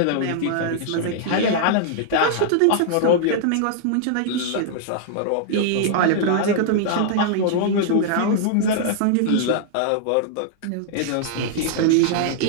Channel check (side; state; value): both; different; correlation -0.01